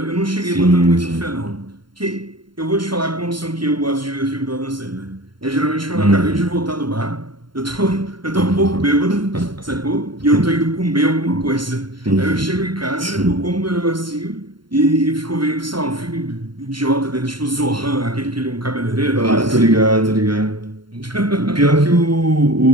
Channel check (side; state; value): left; late; 0.72 ms